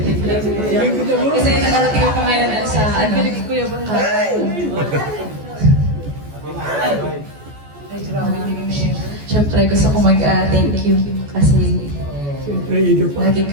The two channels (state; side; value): late; left; 14 ms